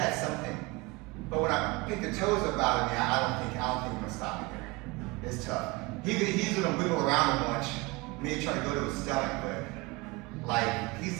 something. But when I picked the toes up out of me, I don't think I'm gonna stop it there. It's tough. He's gonna wiggle around a bunch, maybe try to go to his stomach, but like he's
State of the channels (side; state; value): left; quieter; 24.5 dB